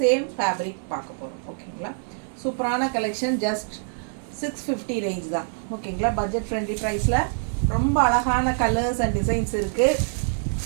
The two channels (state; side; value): silent; left; digital silence